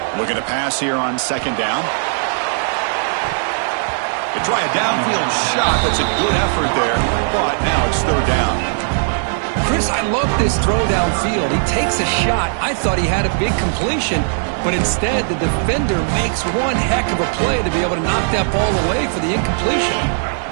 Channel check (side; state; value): left; silent; digital silence